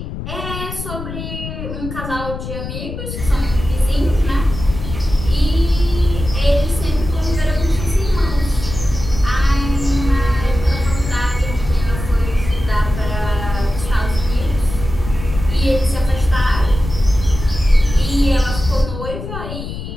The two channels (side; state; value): left; noise; rumble, 8 dB below the sound